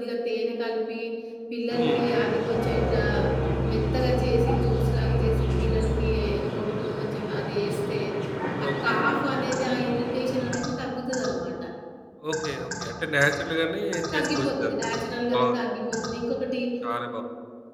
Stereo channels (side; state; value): both; identical; correlation 1.00